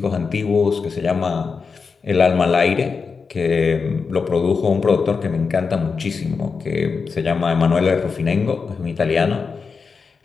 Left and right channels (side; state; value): right; quieter; 5.1 dB